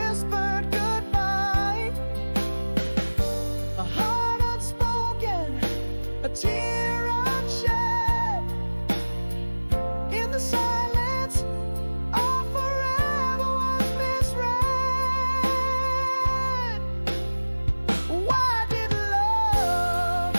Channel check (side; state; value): both; inverted; correlation -1.00